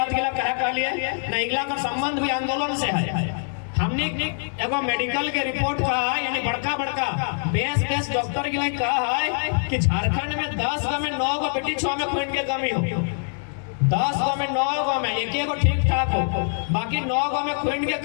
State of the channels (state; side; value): silent; right; 63 dB below the other